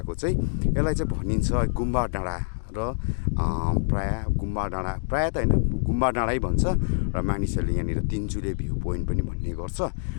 चाहिँ। यसलाई चाहिँ भनिन्छ गुम्बा डाँडा र प्रायः गुम्बा डाँडा प्रायः त होइन गुम्बा डाँडै भन्छ र मानिसहरूले यहाँनिर तिनचुले भ्यू पोइन्ट पनि भन्ने गर्छ।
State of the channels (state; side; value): silent; right; digital silence